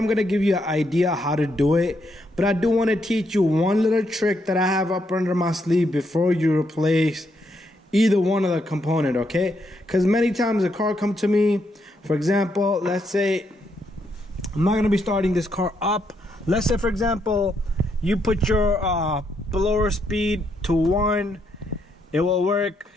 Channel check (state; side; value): normal; both; correlation 0.77